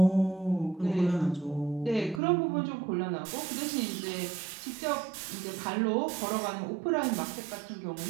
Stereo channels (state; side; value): drops out; left; at 2.2 s